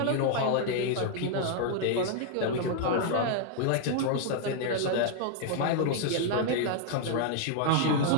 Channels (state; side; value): different; both; correlation 0.00